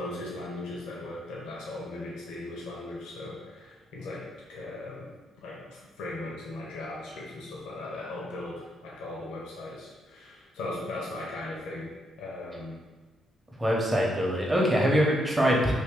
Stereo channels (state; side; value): normal; both; correlation 0.78